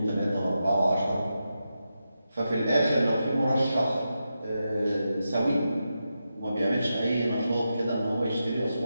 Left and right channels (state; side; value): inverted; both; correlation -0.88